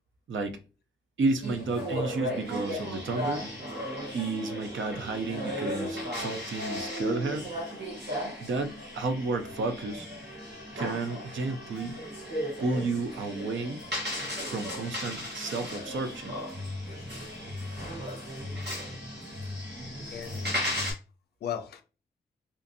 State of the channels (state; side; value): normal; both; correlation 0.45